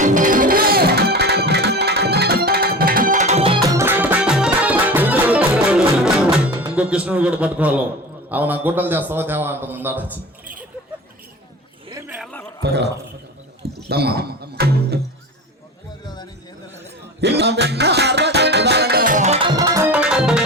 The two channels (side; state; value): both; normal; correlation 0.33